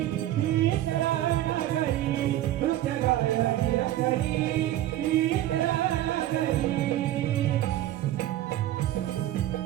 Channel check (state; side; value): quieter; left; 13.7 dB